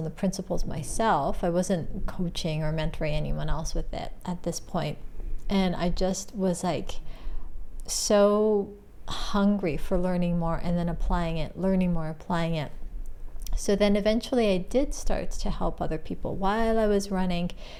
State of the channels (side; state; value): both; identical; correlation 1.00